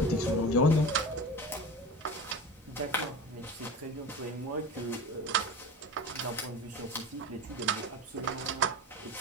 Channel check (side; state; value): both; normal; correlation 0.31